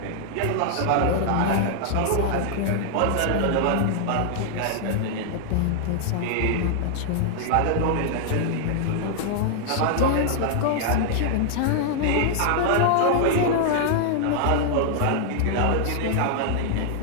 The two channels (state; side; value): different; both; correlation 0.00